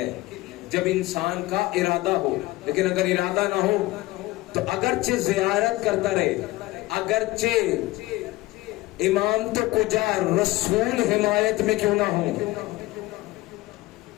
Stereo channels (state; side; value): quieter; right; 19.3 dB